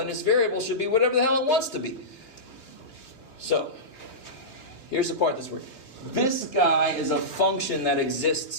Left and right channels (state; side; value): late; right; 3.5 ms